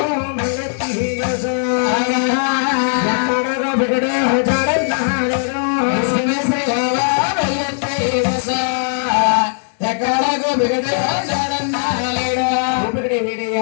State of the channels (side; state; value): right; silent; digital silence